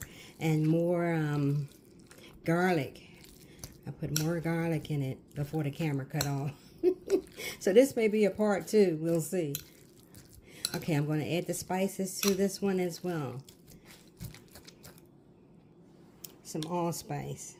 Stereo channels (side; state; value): both; identical; correlation 1.00